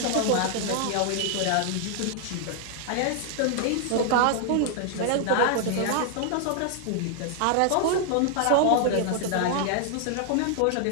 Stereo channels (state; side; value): different; both; correlation 0.00